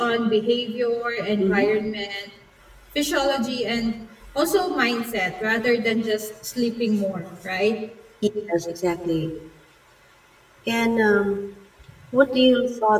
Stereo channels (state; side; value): identical; both; correlation 1.00